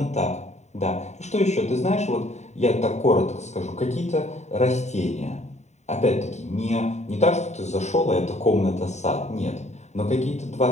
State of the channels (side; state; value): right; late; 0.33 ms